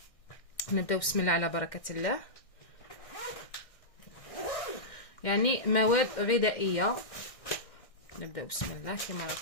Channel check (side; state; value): right; late; 1.6 ms